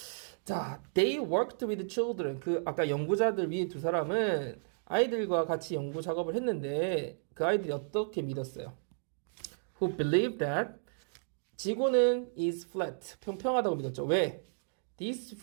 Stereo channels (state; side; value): silent; left; digital silence